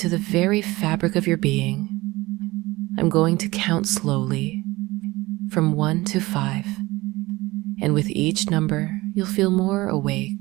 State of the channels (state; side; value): quieter; left; 20.3 dB